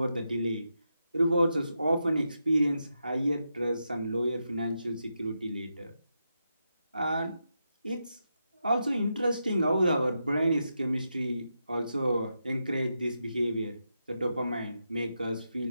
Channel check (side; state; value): both; inverted; correlation -0.86